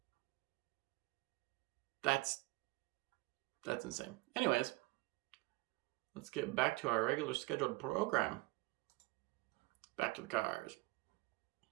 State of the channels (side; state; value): left; quieter; 22.6 dB